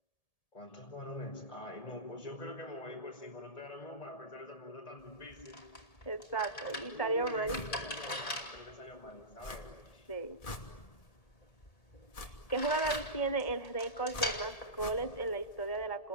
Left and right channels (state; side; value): late; right; 1.7 ms